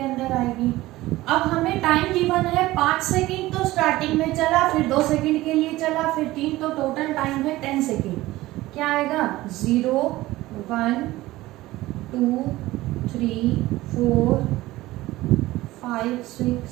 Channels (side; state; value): left; quieter; 17.6 dB